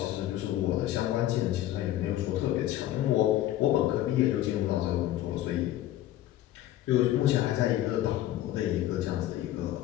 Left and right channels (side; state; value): right; quieter; 13.8 dB